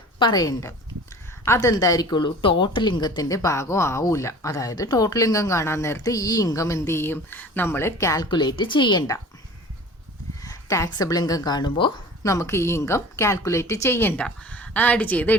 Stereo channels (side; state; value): both; normal; correlation 0.42